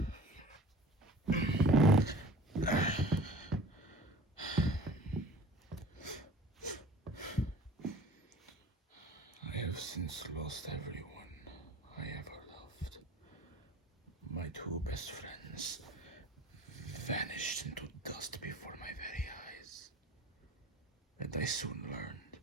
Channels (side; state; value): both; normal; correlation 0.43